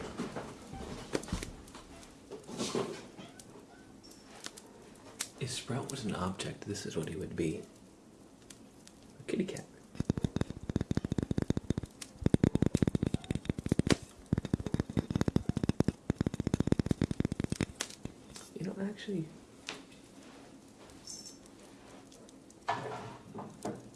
If Sprout was an object, this is what he would be. A kitty cat. You know, actually... Oh,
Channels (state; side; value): identical; both; correlation 1.00